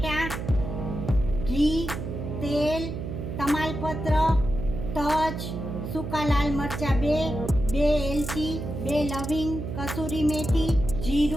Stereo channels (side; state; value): right; noise; hum, 6 dB below the sound